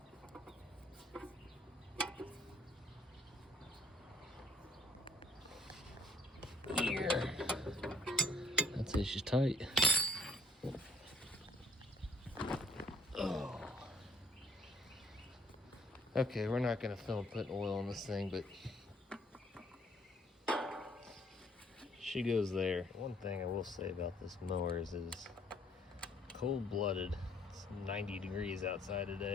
Here. That's it, she's tight. Oh. Okay, we're not gonna film putting oil on this thing, but she goes there. One thing I will say about this mower is it is cold-blooded. It's 90 degrees outside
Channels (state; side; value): normal; both; correlation 0.63